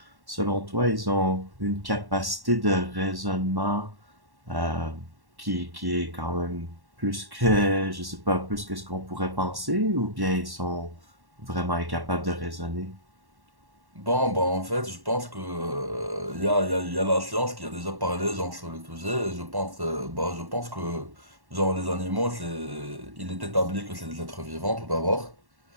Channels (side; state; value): left; late; 1.1 ms